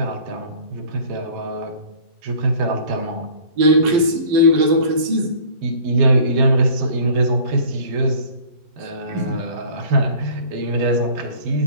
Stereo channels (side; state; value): left; late; 12 ms